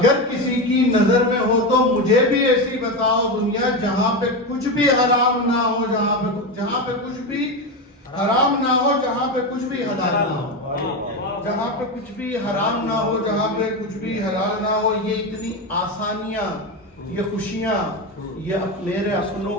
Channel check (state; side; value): normal; both; correlation 0.16